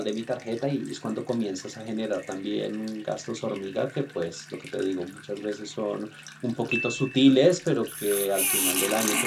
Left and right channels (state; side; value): identical; both; correlation 1.00